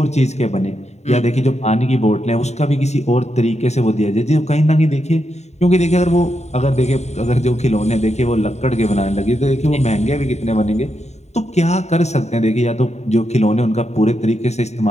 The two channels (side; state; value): right; late; 0.32 ms